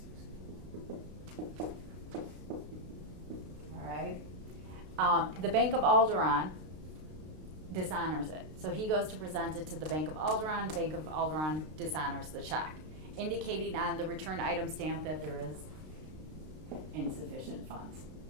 right. The Bank of Alderaan dishonors it. So he goes to present it to the Bank of Alderaan. Bank of Alderaan dishonors the check, indicating on the return item stamp that there is insufficient funds.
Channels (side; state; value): left; late; 32 ms